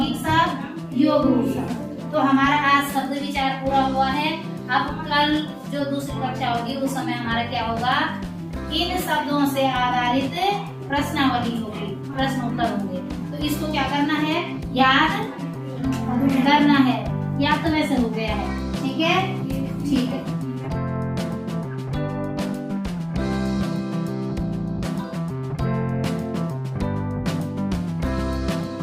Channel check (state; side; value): identical; both; correlation 1.00